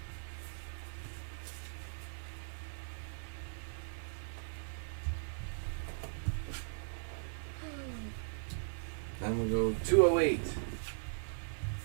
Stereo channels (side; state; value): left; silent; digital silence